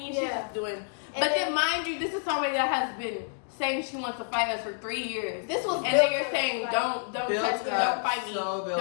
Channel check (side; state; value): right; silent; digital silence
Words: She's Yeah. just doing. And But then, then- mind you, this is somebody that has been saying she wants to fight us for 3 years. This was and then you're built saying, up, don't Built touch me, up, don't fight me, so built